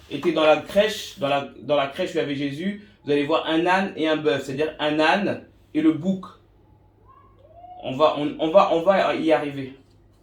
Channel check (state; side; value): identical; both; correlation 1.00